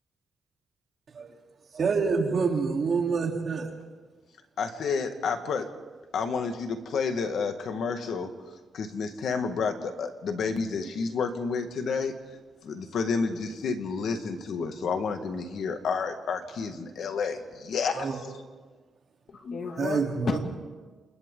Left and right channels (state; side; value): normal; both; correlation 0.74